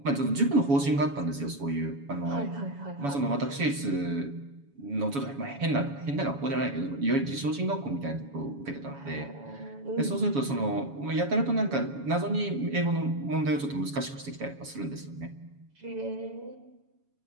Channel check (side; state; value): left; late; 7.1 ms